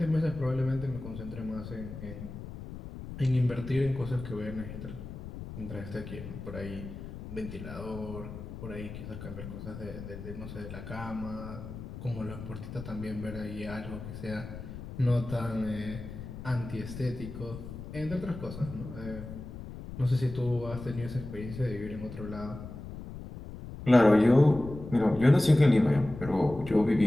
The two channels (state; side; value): noise; left; rumble, 11 dB below the sound